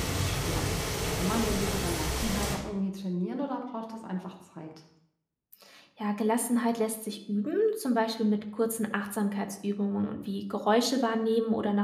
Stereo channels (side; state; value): both; identical; correlation 1.00